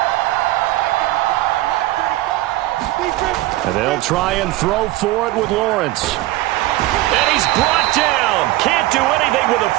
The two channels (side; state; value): left; quieter; 17.2 dB